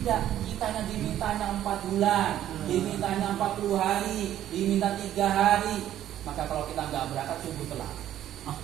kitanya dimintanya 4 bulan, dimintanya 40 hari, diminta 3 hari. Maka kalau kita nggak berangkat sungguh telat.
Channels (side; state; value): left; quieter; 11.9 dB